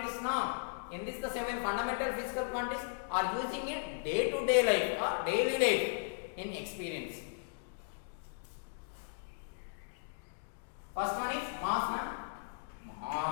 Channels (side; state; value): right; silent; digital silence